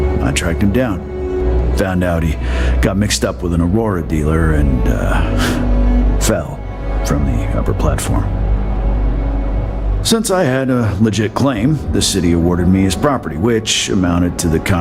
I tracked him down. Found out he got mixed up with an Aurora dealer and fell from the upper platform. Since I had a legit claim, the city awarded me his property, which amounted to the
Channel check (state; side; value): identical; both; correlation 1.00